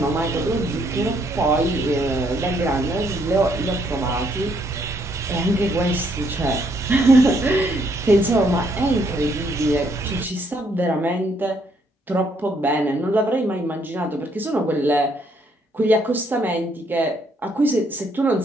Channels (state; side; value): normal; both; correlation 0.71